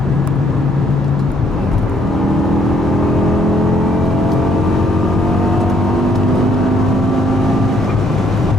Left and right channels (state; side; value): normal; both; correlation 0.68